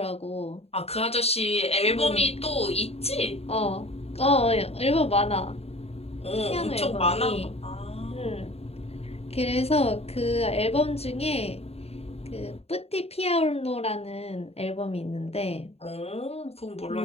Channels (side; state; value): right; late; 0.29 ms